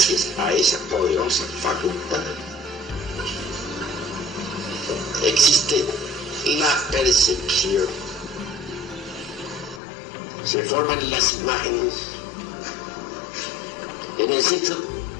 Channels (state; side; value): drops out; right; at 9.8 s